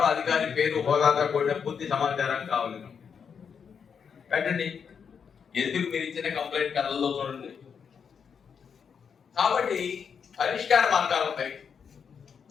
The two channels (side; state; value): right; quieter; 6.7 dB